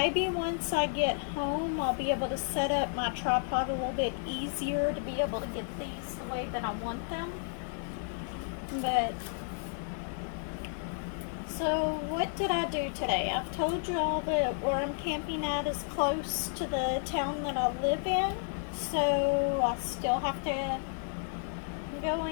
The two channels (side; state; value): right; silent; 56 dB below the other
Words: once I get home, I'll be able to set up my tripod a little bit easier to be able to get these the way that I want them. But so what did I do today? I've told you all that where I'm camping at is close to the town that I live in. So I still have to go